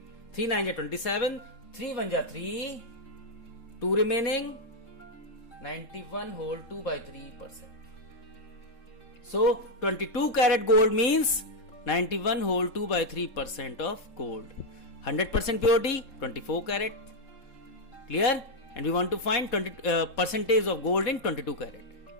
3 9 ja 27, 3 1 ja 3, 2 remaining, 91 whole 2 by 3%. So 22 karat gold means 91 whole 2 by 3% of gold. 100% purity, 24 karat. Clear? And we want to find percentage of gold in 22 karat.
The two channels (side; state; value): right; late; 3.7 ms